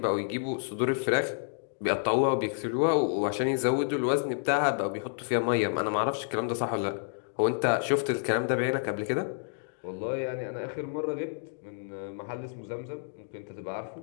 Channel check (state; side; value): silent; right; digital silence